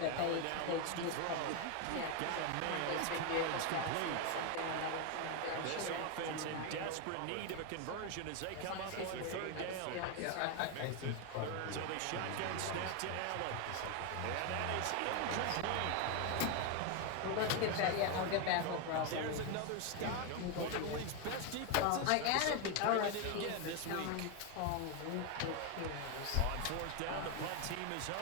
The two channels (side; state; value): both; different; correlation 0.01